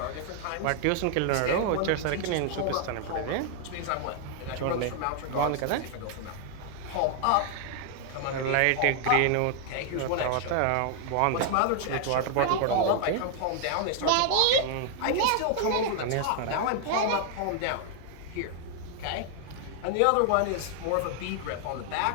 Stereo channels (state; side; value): different; both; correlation 0.00